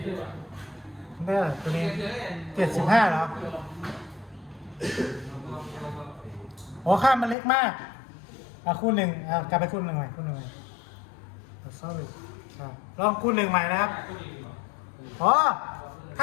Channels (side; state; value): right; drops out; at 7.4 s